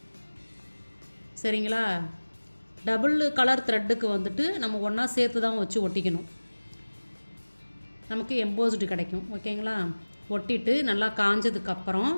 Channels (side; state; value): both; inverted; correlation -1.00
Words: சரிங்களா? டபுள் கலர் த்ரெட்டுக்கு வந்துட்டு நம்ம ஒன்றா சேர்த்து தான் வச்சு ஒட்டிக்கணும், நமக்கு எம்போஸ்டு கிடைக்கும். ஓகேங்களா? ஒட்டிட்டு நல்லா காஞ்சதுக்கப்புறம்